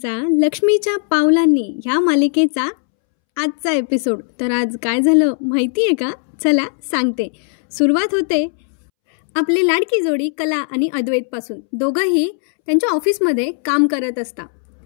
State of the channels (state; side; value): silent; right; 68 dB below the other